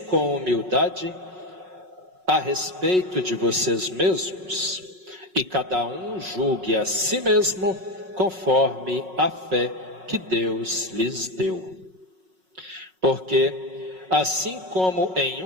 com humildade a respeito de vocês mesmos, e cada um julgue a si mesmo conforme a fé que Deus lhes deu. Porque, assim como em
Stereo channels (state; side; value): late; left; 5.4 ms